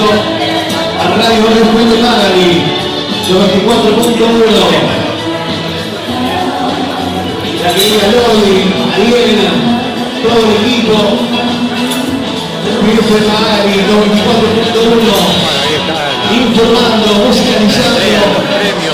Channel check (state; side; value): identical; both; correlation 1.00